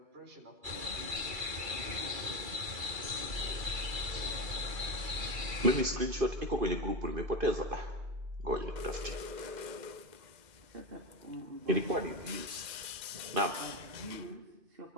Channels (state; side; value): late; left; 2.3 ms